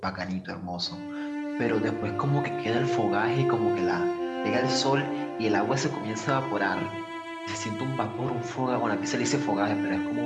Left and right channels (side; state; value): both; identical; correlation 1.00